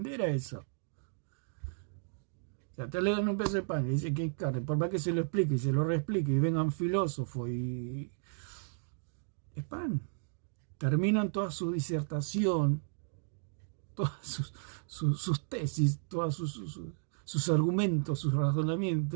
a eso. O sea, te le dan un pedazo de pan y dice que es carne. Por más que se lo explique y se lo reexplique y vengan filósofos y... es pan. Terminan toda su disertación, todas sus tesis, todos sus argumentos, sus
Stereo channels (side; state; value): left; silent; digital silence